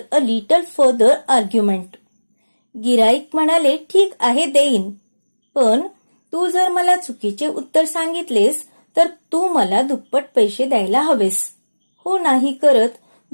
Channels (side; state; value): both; inverted; correlation -1.00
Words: a little further argument. गिराईक म्हणाले, "ठीक आहे, देईन, पण तू जर मला चुकीचे उत्तर सांगितलेस तर तू मला दुप्पट पैसे द्यायला हवेस." हो नाही करत